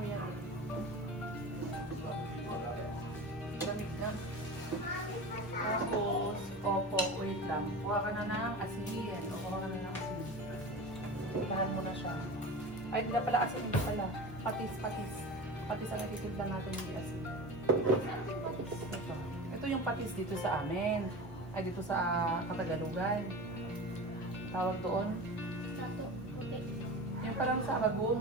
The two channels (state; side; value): normal; both; correlation 0.31